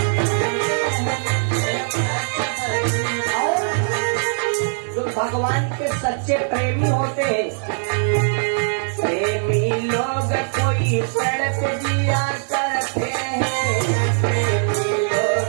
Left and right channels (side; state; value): left; silent; digital silence